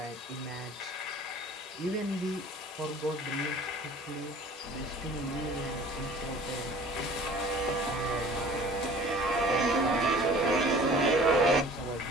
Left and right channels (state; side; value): normal; both; correlation 0.47